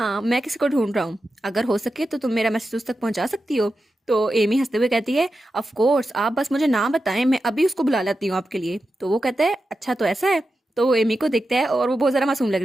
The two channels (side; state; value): both; normal; correlation 0.90